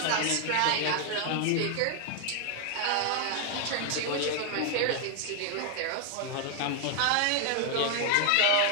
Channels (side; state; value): both; different; correlation 0.00